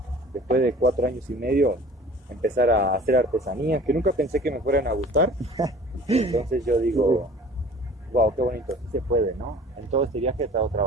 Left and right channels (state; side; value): normal; both; correlation 0.46